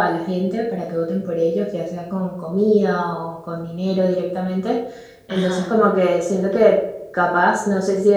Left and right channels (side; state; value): both; identical; correlation 1.00